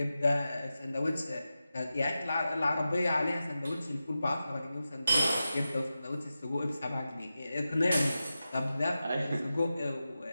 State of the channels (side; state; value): both; inverted; correlation -0.92